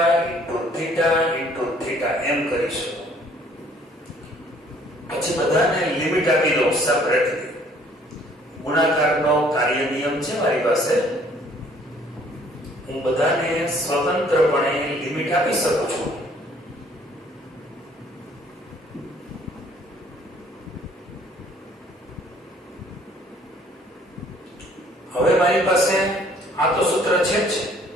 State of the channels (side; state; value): both; normal; correlation 0.59